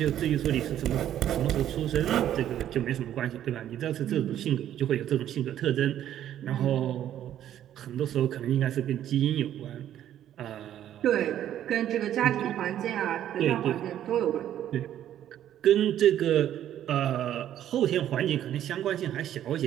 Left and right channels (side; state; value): left; quieter; 11.3 dB